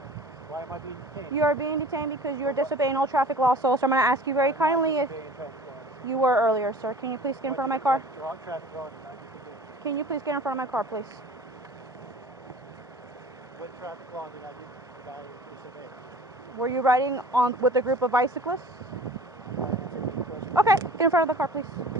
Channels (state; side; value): normal; both; correlation 0.44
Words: Why am I being detained? You are being detained because you are disobeying all traffic laws, so I'm going to ask you very kindly if you were earlier, sir. Can you please get in front of my car? Can you please get in front of my car, please? What traffic law did I disobey? Were you riding on with a group of bicyclists? Okay, get in front of the car, please.